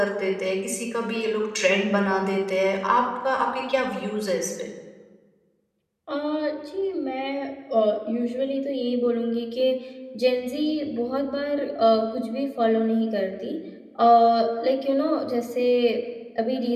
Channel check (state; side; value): identical; both; correlation 1.00